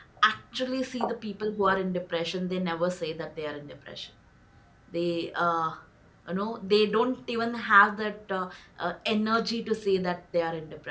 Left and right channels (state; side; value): identical; both; correlation 1.00